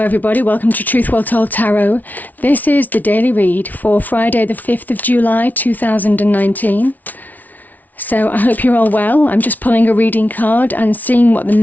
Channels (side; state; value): right; late; 0.078 ms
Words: welcome to Truth Well Told Tarot. This is the daily read for Friday the 5th of July 2019. So I hope you're all well. I'm just pulling a reading card and seeing what the